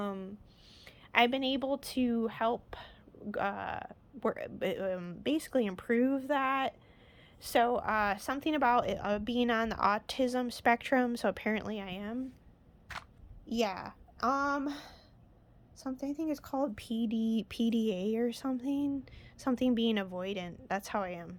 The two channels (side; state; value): both; identical; correlation 1.00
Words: been able to help basically improve that. So something about being on the autism spectrum, so apparently I am. Yeah. Something I think it's called PDA or something being avoidant. That's how I am.